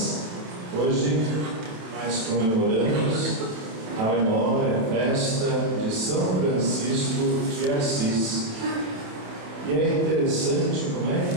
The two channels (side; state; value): left; late; 27 ms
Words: hoje nós comemoramos a memória, a festa de São Francisco de Assis. E é interessante como é